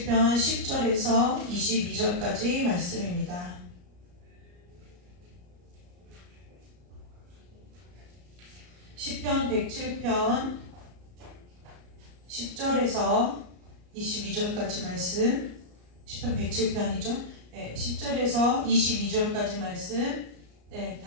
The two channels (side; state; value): left; late; 34 ms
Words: 10절에서 22절까지 말씀입니다. 시편 107편 10절에서 22절까지 말씀, 시편 107편이죠. 네, 10절에서 22절까지 말씀, 네,